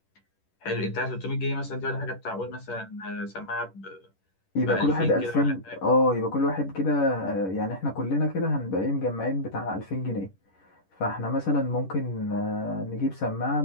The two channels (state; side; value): late; right; 10 ms